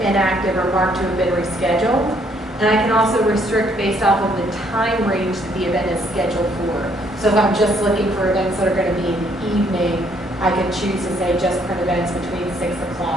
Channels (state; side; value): normal; both; correlation 0.67